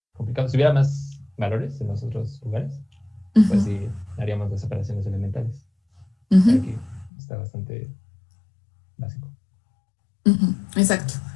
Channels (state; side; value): drops out; right; at 7.1 s